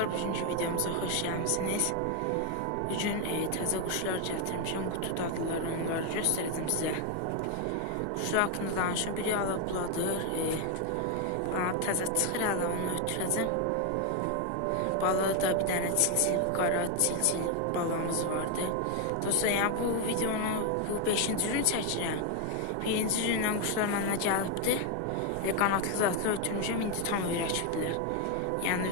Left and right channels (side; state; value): both; different; correlation 0.01